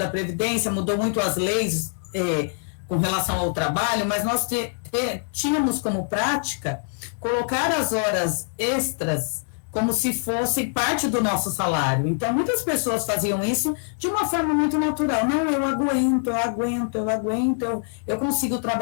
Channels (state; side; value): silent; right; digital silence